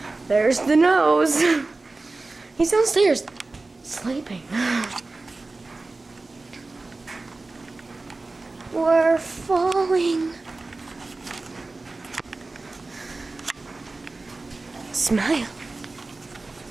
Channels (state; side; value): quieter; left; 3.4 dB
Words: There's the nose. He's downstairs, sleeping. We're falling. Smile.